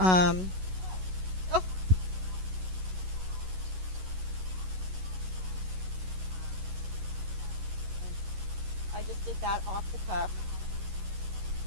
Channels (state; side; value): late; left; 11 ms